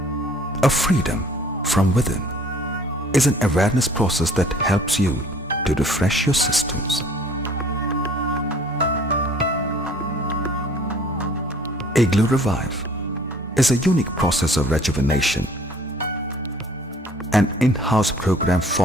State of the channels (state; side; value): normal; both; correlation 0.53